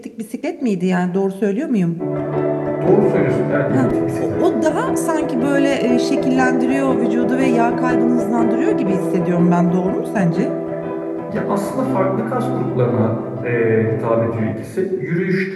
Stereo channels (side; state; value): both; identical; correlation 1.00